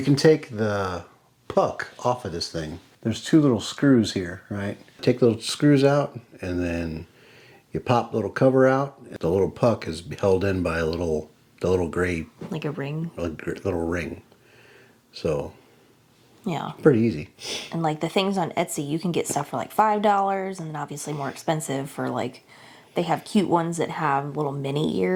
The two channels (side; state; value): both; identical; correlation 1.00